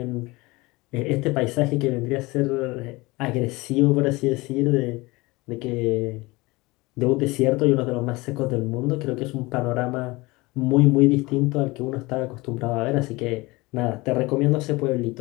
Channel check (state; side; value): quieter; right; 22.7 dB